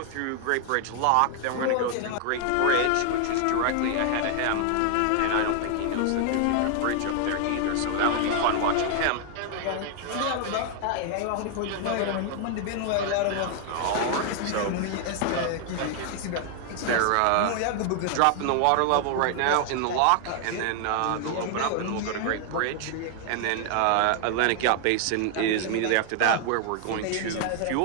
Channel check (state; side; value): different; both; correlation 0.00